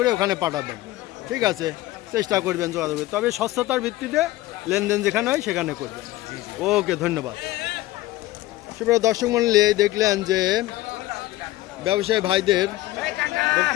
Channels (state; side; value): quieter; right; 17.0 dB